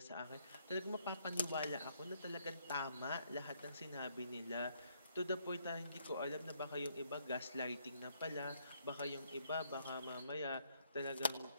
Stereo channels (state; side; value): inverted; both; correlation -0.71